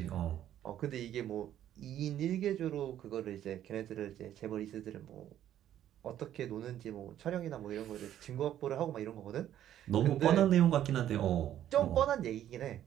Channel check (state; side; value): quieter; left; 11.4 dB